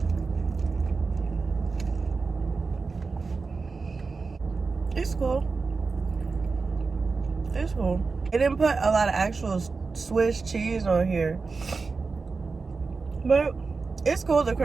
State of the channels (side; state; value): left; quieter; 4.4 dB